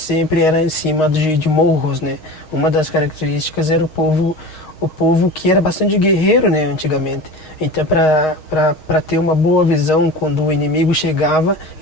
era em cima de morros, né. Uma das características era o povo que era bastante guerreiro, né, antigamente. Então, para ter uma boa visão quando o inimigo chegava,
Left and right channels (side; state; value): right; late; 6.4 ms